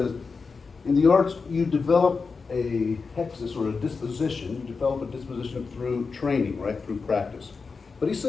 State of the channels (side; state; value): right; quieter; 4.7 dB